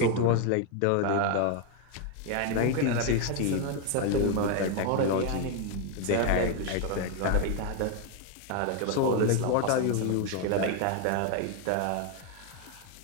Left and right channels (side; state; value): both; different; correlation 0.01